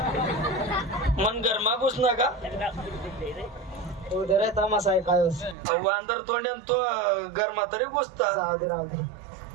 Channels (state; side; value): drops out; left; at 5.6 s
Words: मन गरमा घुस नका. उदर तमासा आहे काय वांदर तोंड्यान तो गरमा तरी घुसता. राहू दे राहू दे.